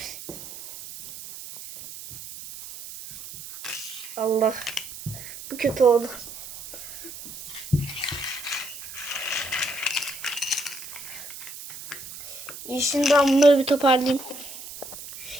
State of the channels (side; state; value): right; noise; hiss, 12 dB below the sound